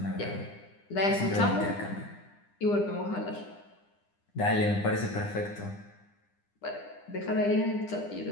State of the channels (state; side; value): late; right; 9.9 ms